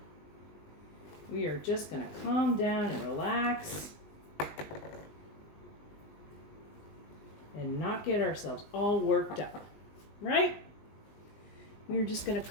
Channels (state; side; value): late; right; 20 ms